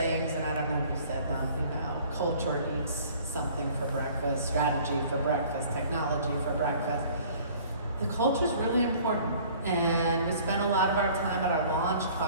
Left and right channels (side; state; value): both; inverted; correlation -0.52